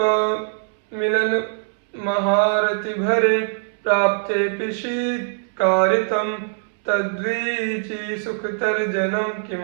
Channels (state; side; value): silent; left; 64 dB below the other